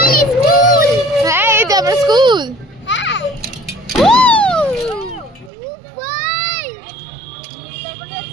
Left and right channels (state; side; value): drops out; left; at 5.5 s